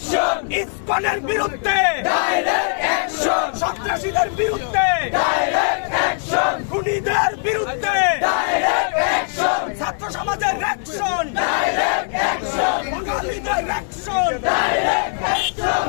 ইসকনের বিরুদ্ধে ডাইরেক্ট অ্যাকশন সন্ত্রাসীদের বিরুদ্ধে ডাইরেক্ট অ্যাকশন খুনিদের বিরুদ্ধে ডাইরেক্ট অ্যাকশন ছাত্র সমাজের অ্যাকশন ডাইরেক্ট অ্যাকশন বাঙালিদের অ্যাকশন ডাইরেক্ট অ্যাকশন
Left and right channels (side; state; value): right; silent; 59 dB below the other